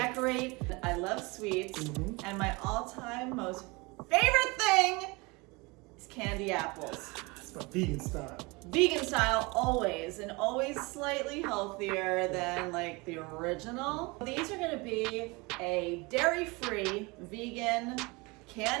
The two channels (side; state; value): left; quieter; 25.8 dB